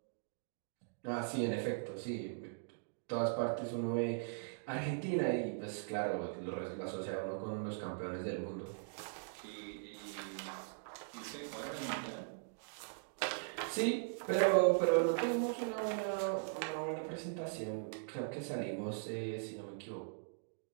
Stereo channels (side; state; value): left; silent; digital silence